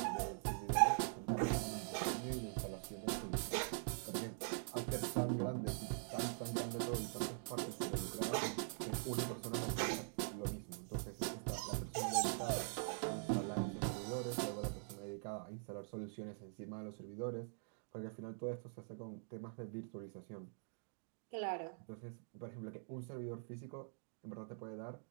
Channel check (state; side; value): silent; left; digital silence